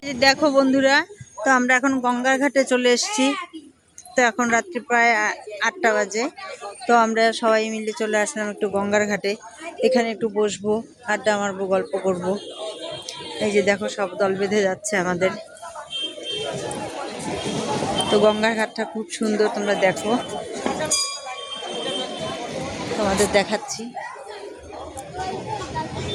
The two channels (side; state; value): both; identical; correlation 1.00